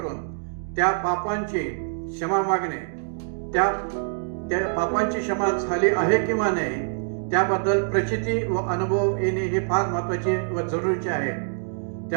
त्या पापांची क्षमा मागणे, त्या पापांची क्षमा झाली आहे किंवा नाही त्याबद्दल प्रचिती व अनुभव येणे हे फार महत्त्वाचे व जरुरीचे आहे.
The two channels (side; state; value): left; silent; digital silence